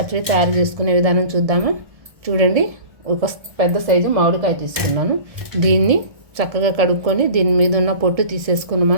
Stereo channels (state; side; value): late; left; 1.7 ms